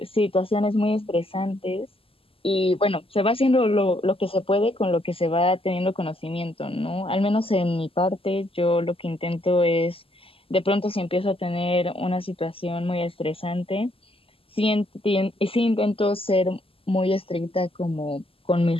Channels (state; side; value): late; right; 0.27 ms